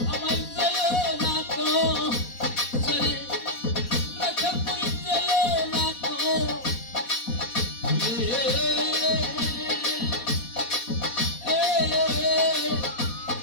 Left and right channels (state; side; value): late; right; 4.2 ms